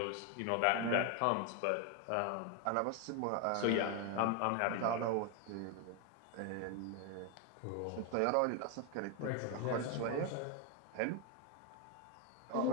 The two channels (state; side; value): different; both; correlation 0.01